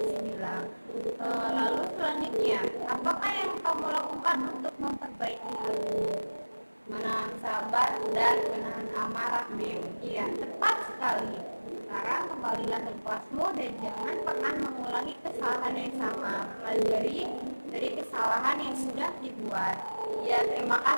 bilang. Lalu selanjutnya, apakah yang kamu lakukan untuk memperbaiki hal ini? Menahan sabar arah B. Iya, tepat sekali. Sekarang kembalilah ke kelasmu dan jangan pernah mengulangi kesalahan yang sama. Pelajari dari kesalahan yang sudah dibuat. Ya, terima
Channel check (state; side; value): inverted; both; correlation -1.00